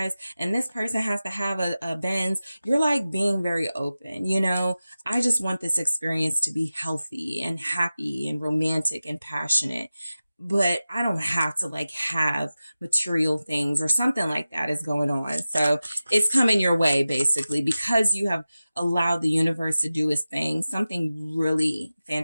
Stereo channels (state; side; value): inverted; both; correlation -0.95